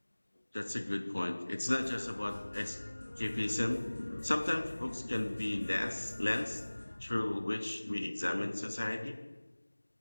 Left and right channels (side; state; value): both; inverted; correlation -1.00